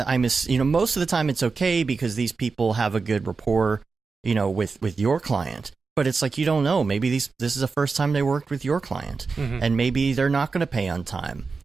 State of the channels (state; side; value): quieter; left; 4.6 dB